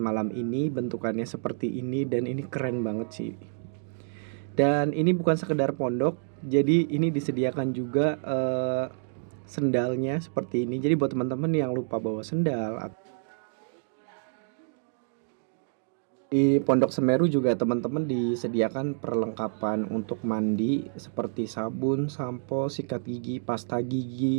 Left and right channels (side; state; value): left; silent; digital silence